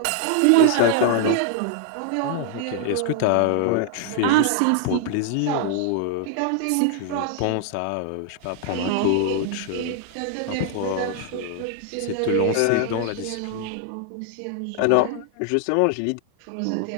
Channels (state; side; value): different; both; correlation 0.00